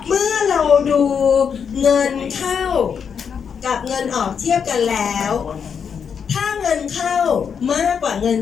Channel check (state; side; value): quieter; right; 6.9 dB